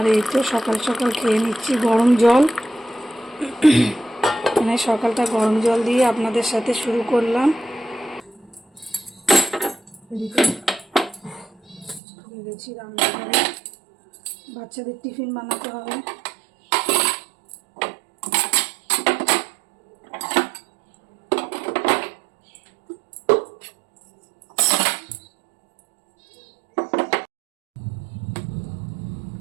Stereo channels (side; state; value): left; drops out; at 12.0 s